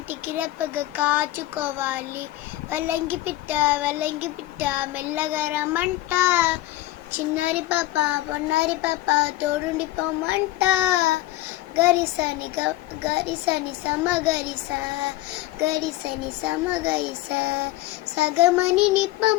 రెప్పగా కాచుకోవాలి. వల్లంకి పిట్ట మెల్లగా రమ్మంట, చిన్నారి పాప పొన్నారి పాప తోడుండి పొమ్మంట. గరిసని సమగరిస గరిసని సమగరిస సగమని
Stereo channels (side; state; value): right; quieter; 16.3 dB